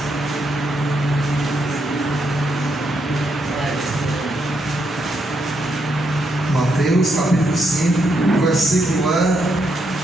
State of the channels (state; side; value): normal; both; correlation 0.78